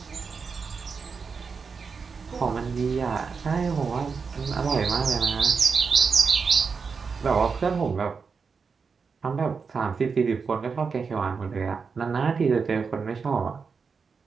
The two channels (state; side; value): quieter; left; 5.3 dB